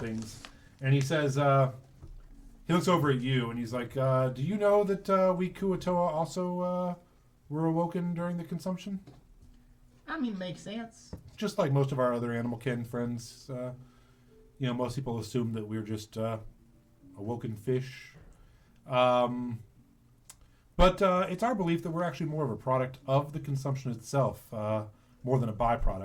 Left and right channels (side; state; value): both; identical; correlation 1.00